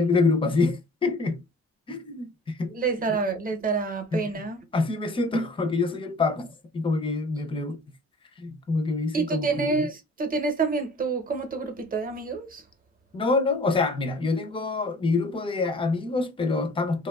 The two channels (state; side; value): normal; both; correlation 0.49